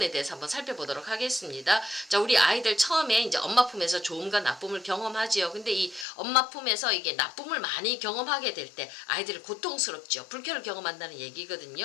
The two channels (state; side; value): drops out; right; at 6.1 s